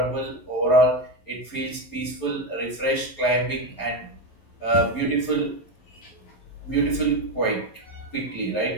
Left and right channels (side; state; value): right; late; 11 ms